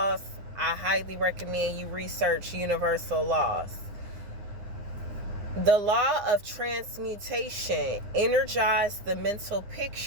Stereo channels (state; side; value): late; left; 9.7 ms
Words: I highly recommend you research universal laws. The law of transmutation energizes the mental